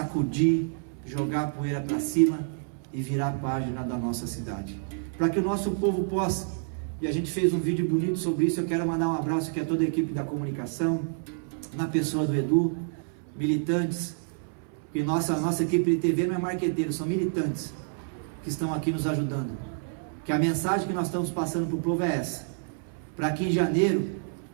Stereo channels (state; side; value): silent; left; 59 dB below the other